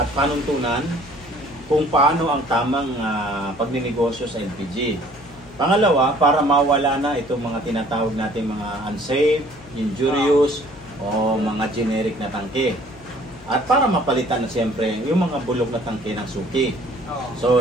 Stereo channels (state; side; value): noise; left; hum, 23 dB below the sound